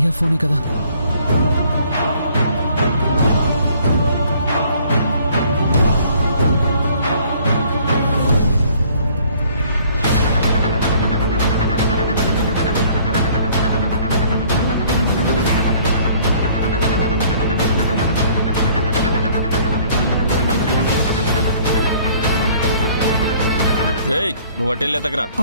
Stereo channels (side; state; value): both; inverted; correlation -0.57